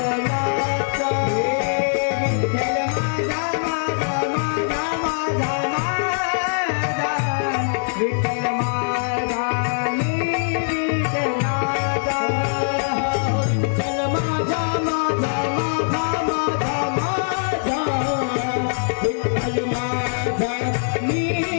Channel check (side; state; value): right; silent; 61 dB below the other